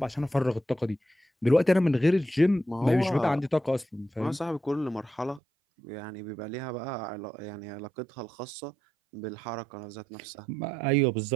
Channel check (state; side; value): drops out; left; at 5.4 s